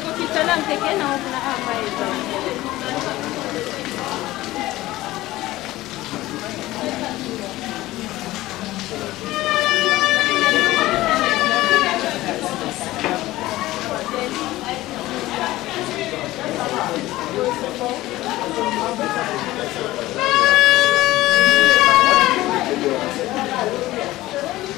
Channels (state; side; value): quieter; right; 17.1 dB